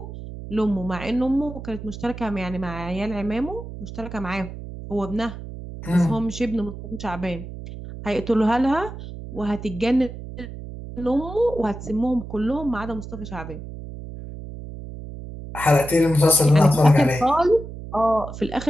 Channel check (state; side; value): noise; right; hum, 11 dB below the sound